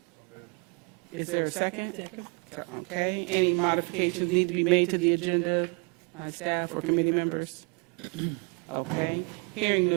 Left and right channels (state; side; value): quieter; left; 32.3 dB